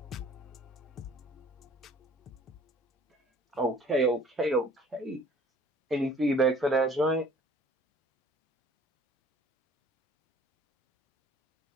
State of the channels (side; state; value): both; normal; correlation 0.52